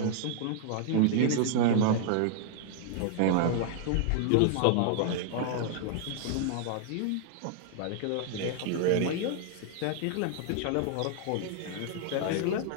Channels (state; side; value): different; both; correlation -0.01